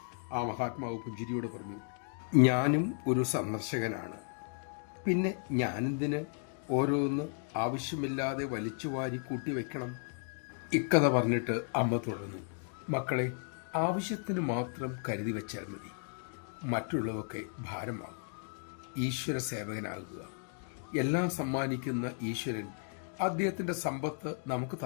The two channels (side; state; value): right; silent; 55 dB below the other